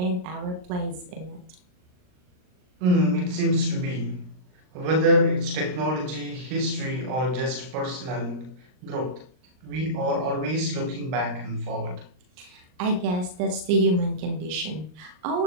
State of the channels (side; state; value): left; late; 39 ms